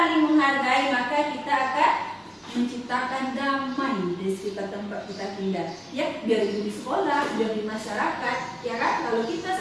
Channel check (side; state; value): both; identical; correlation 1.00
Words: menghargai, maka kita akan menciptakan damai di sekitar tempat kita tinggal. Ya, biar itu di sekolah, biar di masyarakat, ya kan? Kalau kita